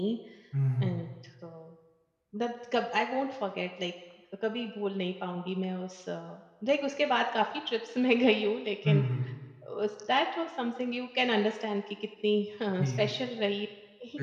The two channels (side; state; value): both; identical; correlation 1.00